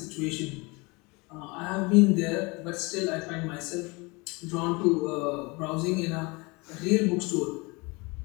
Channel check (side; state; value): right; quieter; 26.5 dB